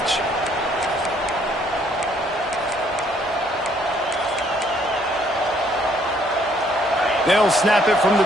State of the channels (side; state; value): both; normal; correlation 0.65